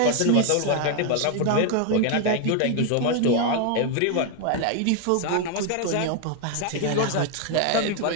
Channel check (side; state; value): both; different; correlation 0.01